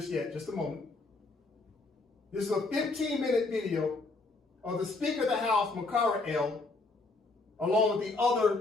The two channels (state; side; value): quieter; right; 3.5 dB